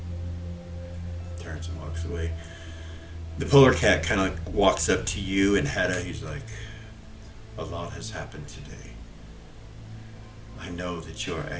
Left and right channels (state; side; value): identical; both; correlation 1.00